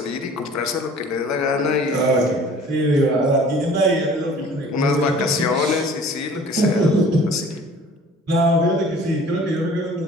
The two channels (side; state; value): both; normal; correlation 0.48